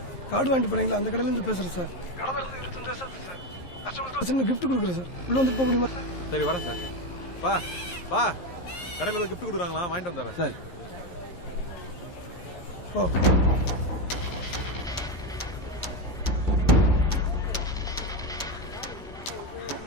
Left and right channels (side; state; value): right; late; 11 ms